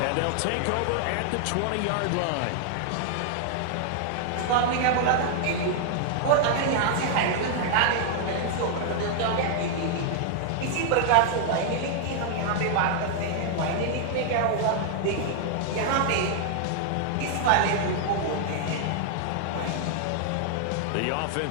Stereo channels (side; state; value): both; different; correlation 0.00